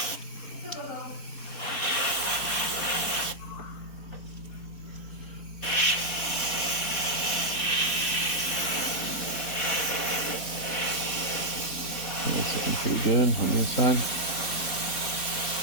That's looking pretty good on the inside.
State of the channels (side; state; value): right; late; 4.2 ms